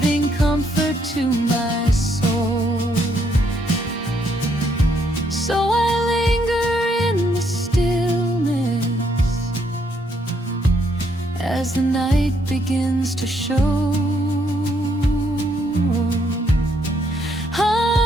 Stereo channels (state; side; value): normal; both; correlation 0.72